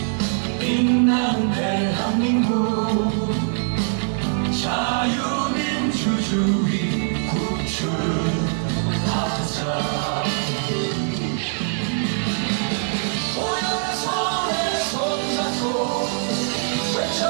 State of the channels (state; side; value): silent; left; digital silence